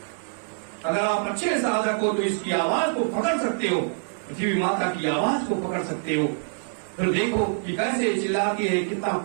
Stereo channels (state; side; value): silent; left; digital silence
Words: अगर आप अच्छे साधक हो तो इसकी आवाज को पकड़ सकते हो, पृथ्वी माता की आवाज को पकड़ सकते हो। फिर देखो कि कैसे चिल्लाती है, कितना